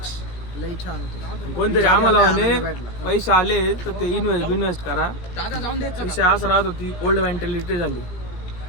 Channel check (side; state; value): right; late; 17 ms